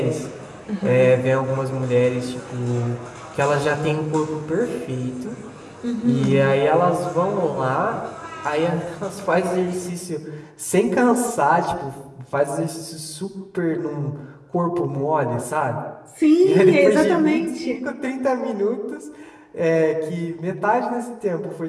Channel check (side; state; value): both; identical; correlation 1.00